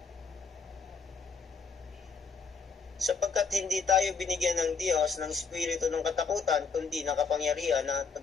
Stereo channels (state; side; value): quieter; right; 5.1 dB